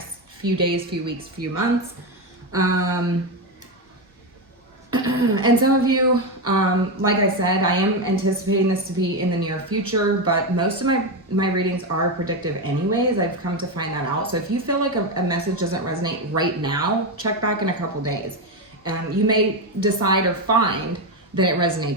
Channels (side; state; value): both; normal; correlation 0.11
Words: few days, few weeks, few months. And some of you, like I said, I am anticipating this to be in the near future, but most of my readings are predictive anyways. I've come to find that out. So if you feel like a message doesn't resonate right now, check back in a couple days. You may decide or find that it